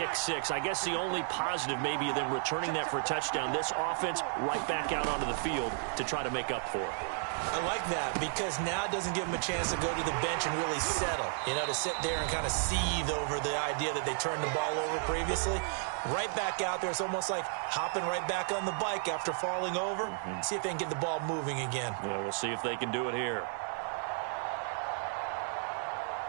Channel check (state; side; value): silent; left; 56 dB below the other